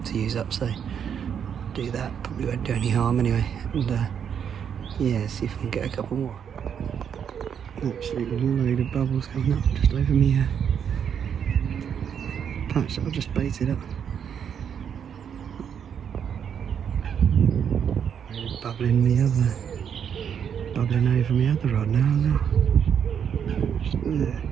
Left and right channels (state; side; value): quieter; left; 8.0 dB